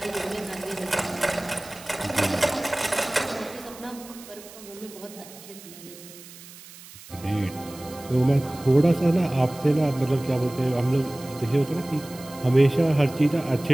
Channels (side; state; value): right; noise; hiss, 18 dB below the sound